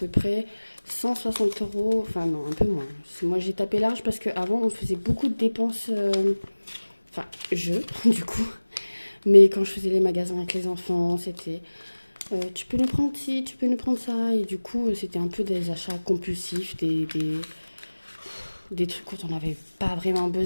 près 160 euros. Enfin, non, un peu moins. Moi, j'ai tapé large parce qu'avant, on faisait beaucoup de dépenses. Enfin, du coup. Mais quand je faisais les magasins avec les enfants, c'était tu peux nous prendre ci, tu peux nous prendre ça. Et du coup, c'était un peu des achats compulsifs, des trucs dont on n'avait pas vraiment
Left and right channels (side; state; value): both; inverted; correlation -1.00